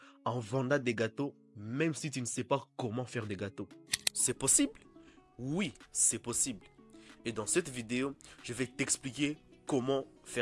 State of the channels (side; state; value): both; identical; correlation 1.00